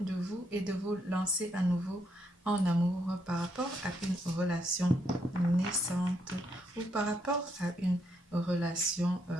de vous et de vous lancer à nouveau en amour par rapport à une relation naissante ou par rapport à une relation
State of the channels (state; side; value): normal; both; correlation 0.75